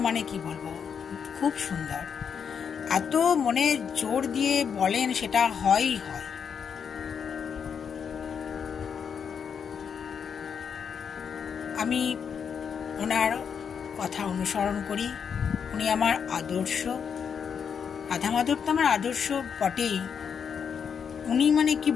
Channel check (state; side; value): quieter; right; 7.0 dB